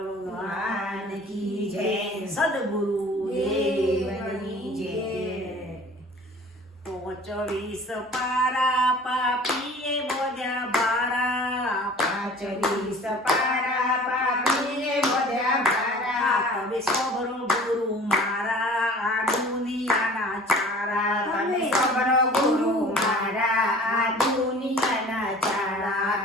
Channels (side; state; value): both; normal; correlation 0.46